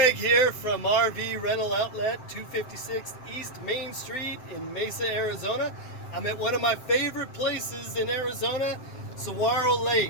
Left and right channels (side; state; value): right; late; 7.7 ms